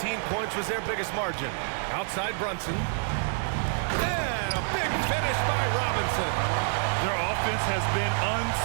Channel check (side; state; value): left; silent; 60 dB below the other